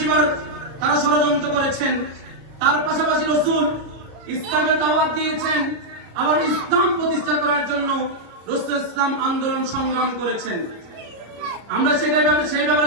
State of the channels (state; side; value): late; left; 33 ms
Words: বার তারা ষড়যন্ত্র করেছেন। তার পাশাপাশি রাসূল ইসলামের দাওয়াত দিয়েছেন, আবার ইসলাম প্রতিষ্ঠা করার জন্য রাসূল ইসলাম আন্দোলন সংগ্রাম করেছেন। আমরা সেই